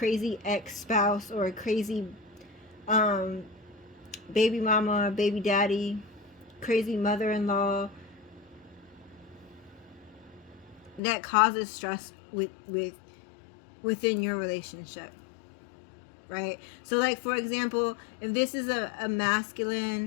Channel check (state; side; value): drops out; right; at 11.0 s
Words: ex-spouse or a crazy baby mama, baby daddy, crazy mother-in-law that causes stress within your relationship, right? So, like, for example, if this is a